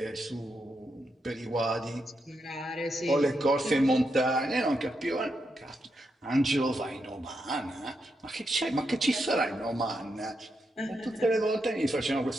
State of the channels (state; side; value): normal; both; correlation 0.83